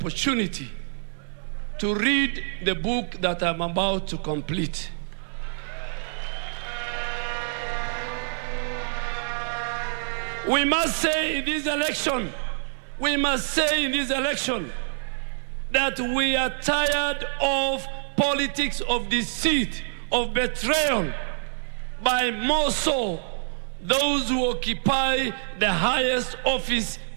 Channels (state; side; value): silent; left; digital silence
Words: to read the book that I'm about to complete. We must say in this election, that we are tired of politics of deceit, of betrayal, by more so those who occupy the highest office